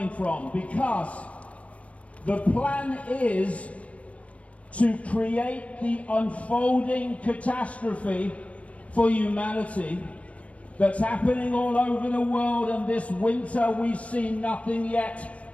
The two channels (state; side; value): late; right; 0.064 ms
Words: from, because the plan is to create the unfolding catastrophe for humanity that's happening all over the world. And this winter we've seen nothing